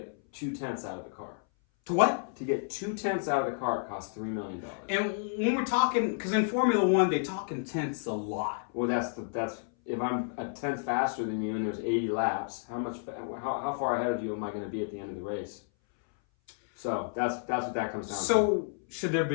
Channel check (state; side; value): silent; right; 57 dB below the other